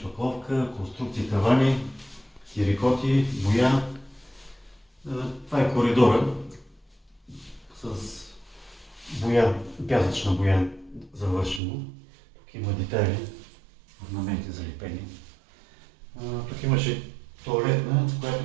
конструкции, тавани, терикоти, боя. Това е коридора с боя, пясъчна боя завършено. Тук има детайли, орнаменти залепени. Тук имаше тоалетна, която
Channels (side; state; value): left; drops out; at 11.6 s